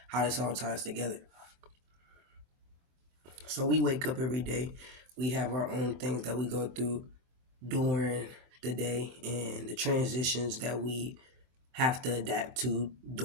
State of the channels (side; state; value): left; late; 23 ms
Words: how this all ties together. So we wake up every day. We have our own things that we go through during the day and the transitions that we have to adapt to